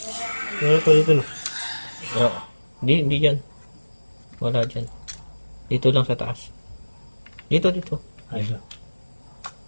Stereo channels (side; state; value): both; inverted; correlation -1.00